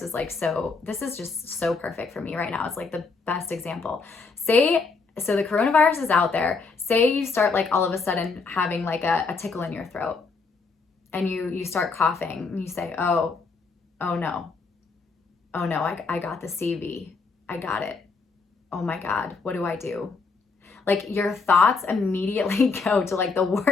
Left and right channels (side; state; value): right; quieter; 4.4 dB